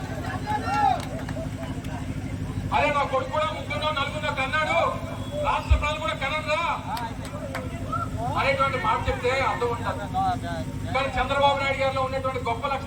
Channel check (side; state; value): both; identical; correlation 1.00